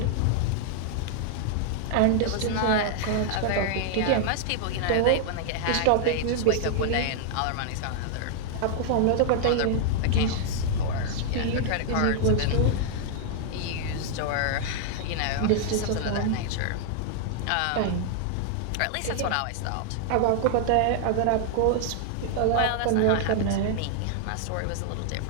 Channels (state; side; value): different; both; correlation -0.01